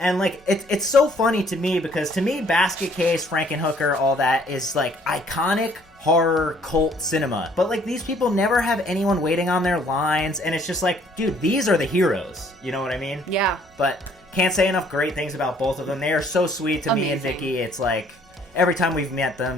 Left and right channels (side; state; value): both; normal; correlation 0.61